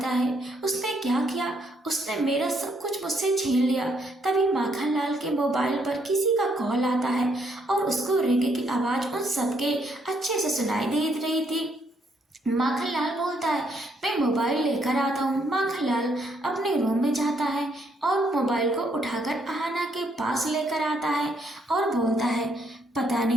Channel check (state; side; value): normal; both; correlation 0.72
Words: है उसने क्या किया? उसने मेरा सब कुछ मुझसे छीन लिया। तभी माखनलाल के मोबाइल पर किसी का कॉल आता है और उसको रिंग की आवाज उन सबके अच्छे से सुनाई दे रही थी। माखनलाल बोलता है, मैं मोबाइल लेकर आता हूँ। माखनलाल अपने रूम में जाता है और मोबाइल को उठाकर आहना के पास लेकर आता है और बोलता है, पता